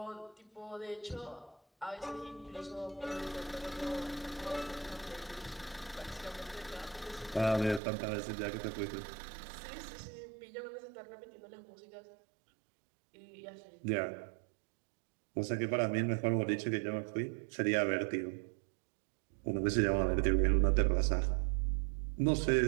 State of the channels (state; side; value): drops out; left; at 7.8 s